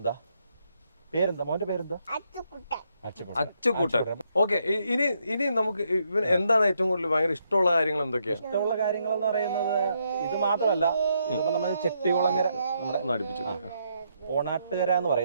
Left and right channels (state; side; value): inverted; both; correlation -0.77